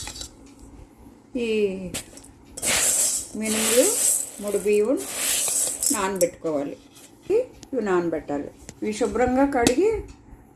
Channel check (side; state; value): both; identical; correlation 1.00